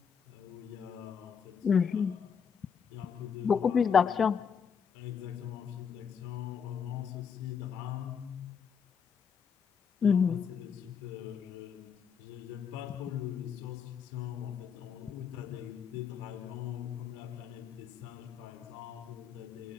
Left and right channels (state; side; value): quieter; right; 6.8 dB